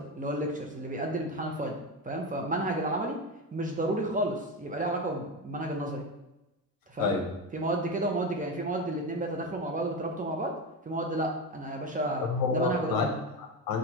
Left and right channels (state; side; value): normal; both; correlation 0.17